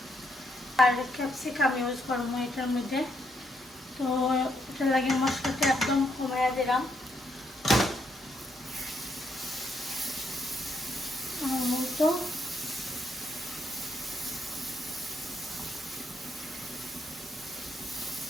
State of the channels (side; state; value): both; normal; correlation 0.76